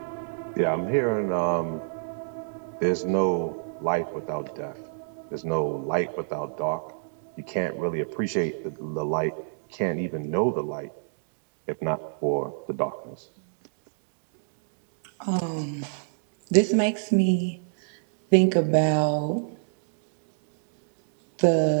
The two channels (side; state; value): left; silent; digital silence